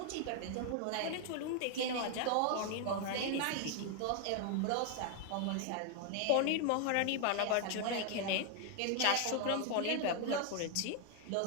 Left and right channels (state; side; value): different; both; correlation 0.00